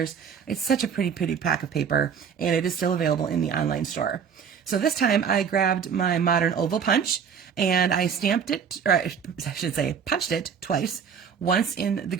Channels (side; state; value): left; quieter; 7.0 dB